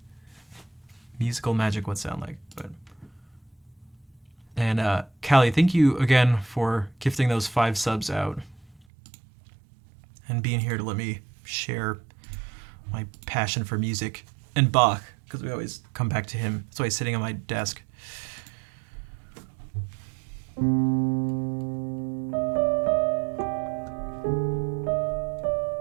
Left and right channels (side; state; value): left; drops out; at 8.8 s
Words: musical magic would sound like. But and Callie, thank you again for gifting those 5 subs out and being here to let me share my passion for music and Bach, because we always come back to him. That's why he's sitting on my desk.